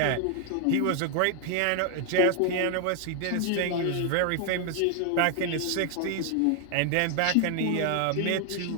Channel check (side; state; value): both; different; correlation 0.01